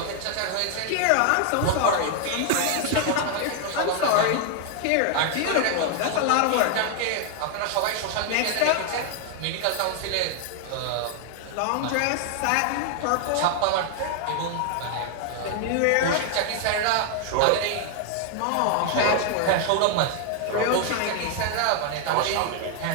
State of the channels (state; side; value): different; both; correlation 0.00